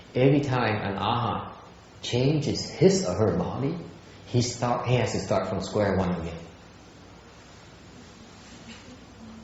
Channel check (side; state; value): both; identical; correlation 1.00